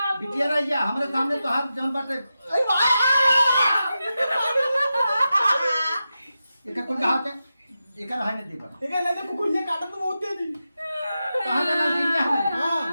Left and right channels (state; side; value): inverted; both; correlation -0.91